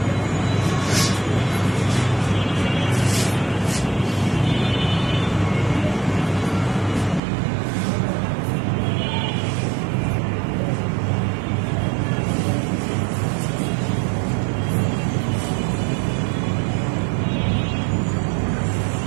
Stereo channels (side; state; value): left; drops out; at 7.2 s